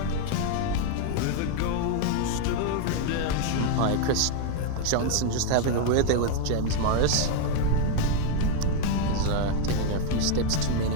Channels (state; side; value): different; both; correlation 0.01